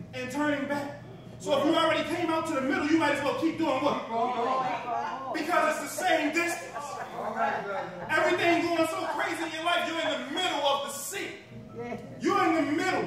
turning back. So if you already came out to the middle, you might as well keep doing what? Because it's the same distance. Everything going so crazy in your life, you're in the middle of the sea. You're in the middle.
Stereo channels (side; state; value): both; identical; correlation 1.00